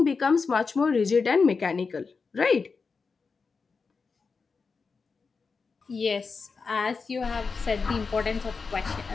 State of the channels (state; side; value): quieter; right; 4.8 dB